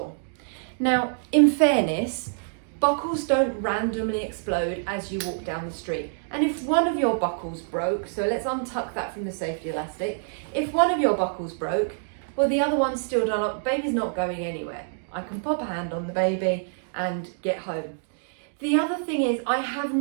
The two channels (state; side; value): silent; left; digital silence